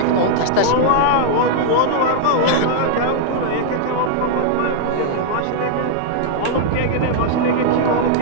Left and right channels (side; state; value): both; different; correlation -0.01